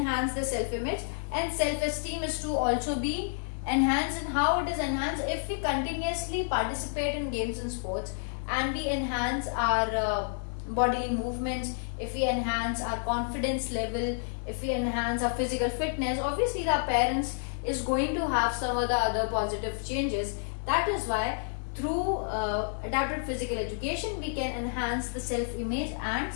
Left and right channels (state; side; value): silent; right; digital silence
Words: the self-image, and self-esteem is to also be enhanced. And how it is enhanced? If we continuously participate in games and sports and we enhance our bodily movements, if we enhance our confidence level, if we enhance our physical fitness, obviously the appearance is going to have some of the other positive changes. That is why through adapted physical education we can enhance the self-image and